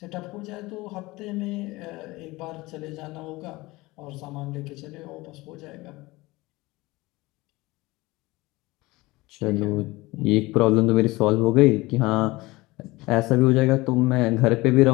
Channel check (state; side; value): quieter; right; 21.1 dB